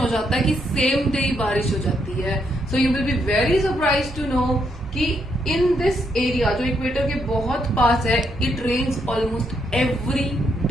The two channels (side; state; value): both; normal; correlation 0.77